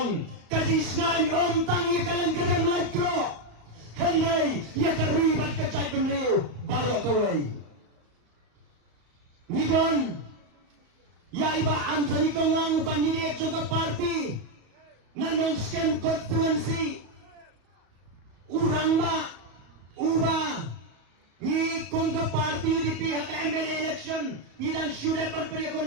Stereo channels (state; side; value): late; left; 35 ms